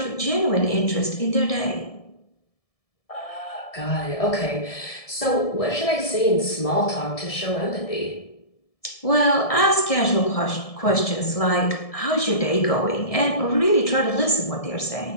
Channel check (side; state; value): right; late; 1.7 ms